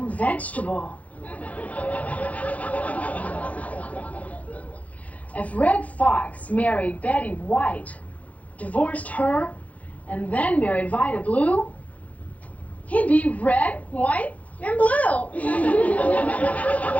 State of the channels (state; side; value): late; right; 0.068 ms